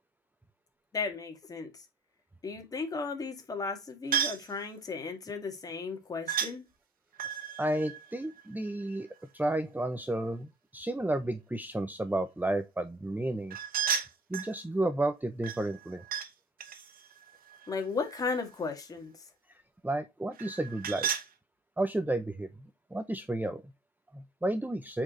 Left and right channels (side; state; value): both; normal; correlation 0.60